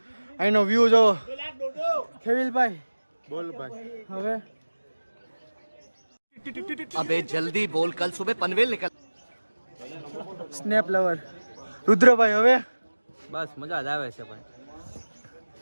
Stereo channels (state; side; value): inverted; both; correlation -1.00